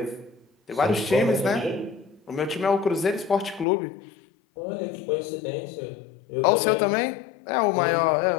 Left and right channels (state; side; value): drops out; right; at 3.7 s